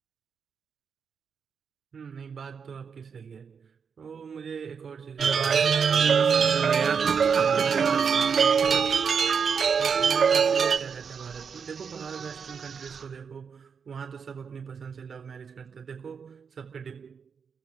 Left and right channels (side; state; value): left; quieter; 6.3 dB